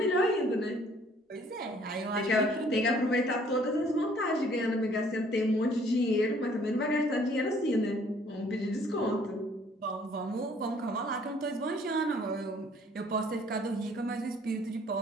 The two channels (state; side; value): normal; both; correlation 0.59